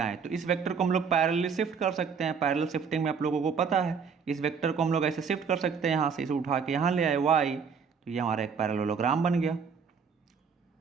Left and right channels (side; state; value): left; quieter; 6.1 dB